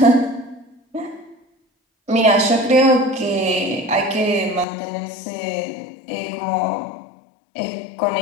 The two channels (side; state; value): right; drops out; at 4.7 s